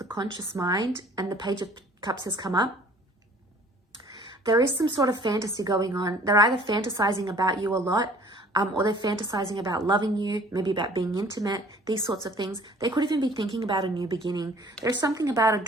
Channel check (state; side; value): normal; both; correlation 0.53